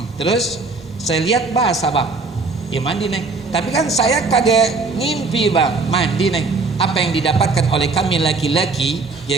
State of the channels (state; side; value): quieter; left; 3.9 dB